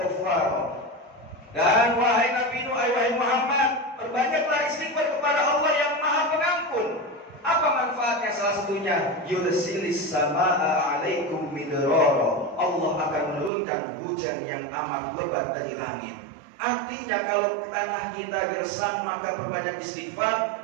ghaffara. Dan wahai Nabi Nuh, wahai Muhammad, perbanyaklah istighfar kepada Allah yang Maha Pengampun. Apa manfaatnya? Salah satu sesungguhnya yursilis samaa alaikum midrara, Allah akan menurunkan hujan yang amat lebat dari langit. Artinya kalau tanah kita gersang maka perbanyak istighfar,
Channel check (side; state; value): left; drops out; at 13.5 s